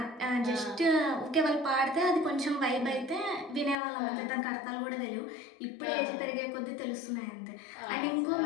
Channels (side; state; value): right; drops out; at 3.8 s